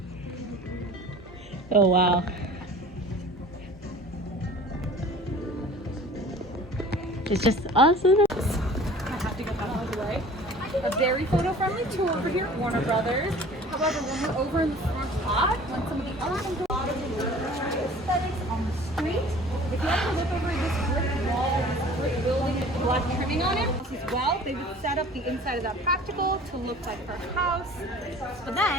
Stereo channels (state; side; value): normal; both; correlation 0.45